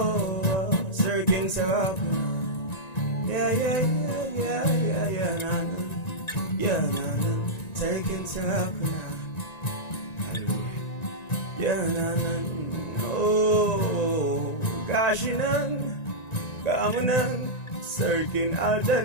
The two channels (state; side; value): late; right; 1.9 ms